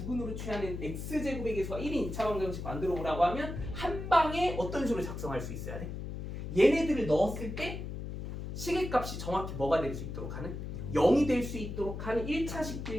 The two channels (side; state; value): left; noise; hum, 7 dB below the sound